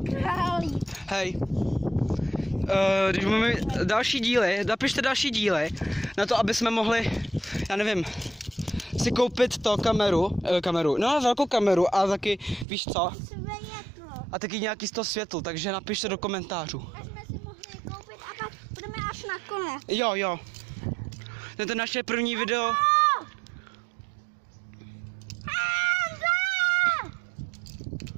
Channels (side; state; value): left; drops out; at 12.7 s